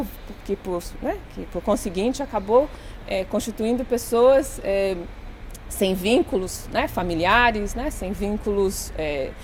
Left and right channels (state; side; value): identical; both; correlation 1.00